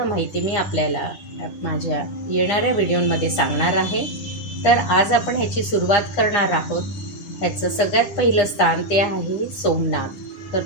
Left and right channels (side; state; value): right; late; 9.8 ms